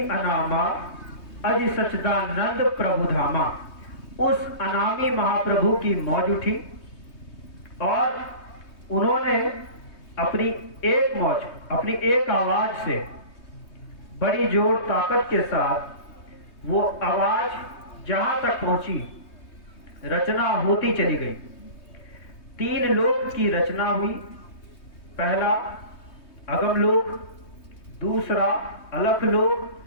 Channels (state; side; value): late; right; 3.2 ms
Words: अनामा अजि सच्चिदानंद प्रभु धामा, उस अनामी महाप्रभु की मौज उठी, और उन्होंने अपनी एक मौज, अपनी एक आवाज से, बड़ी जोर ताकत के साथ वो आवाज जहां तक पहुंची, रचना होती चली गई। 3 लोक की रचना हुई। पहला अगम लोक, दूसरा अलख